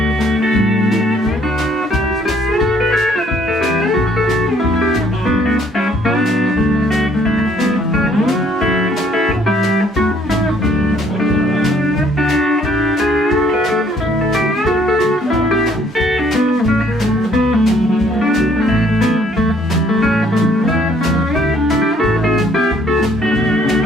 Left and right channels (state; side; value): normal; both; correlation 0.63